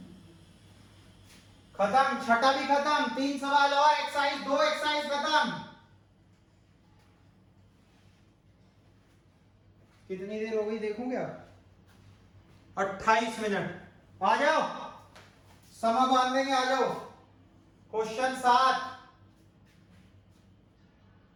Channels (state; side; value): identical; both; correlation 1.00